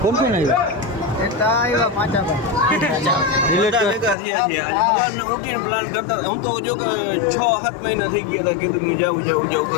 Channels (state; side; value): drops out; right; at 4.2 s